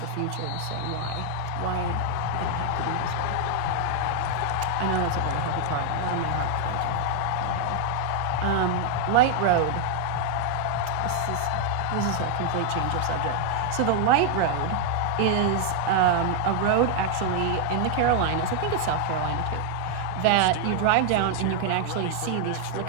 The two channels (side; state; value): both; different; correlation 0.00